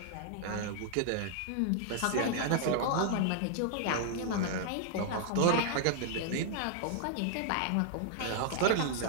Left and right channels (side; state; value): both; different; correlation 0.00